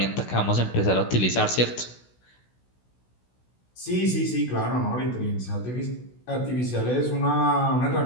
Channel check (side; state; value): right; late; 16 ms